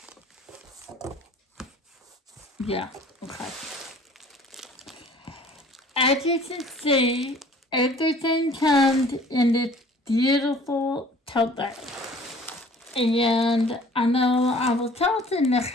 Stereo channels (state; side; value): normal; both; correlation 0.51